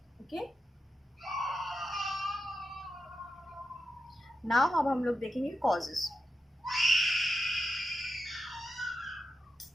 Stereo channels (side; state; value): both; normal; correlation 0.88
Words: ओके, नाउ अब हम लोग देखेंगे कॉजेस।